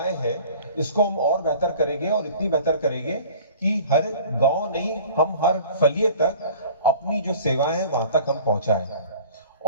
हैं इसको हम और बेहतर करेंगे, और इतनी बेहतर करेंगे कि हर गांव नहीं, हम हर फलिए तक अपनी जो सेवाएं हैं वहां तक हम पहुंचाएं।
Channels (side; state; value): both; inverted; correlation -0.45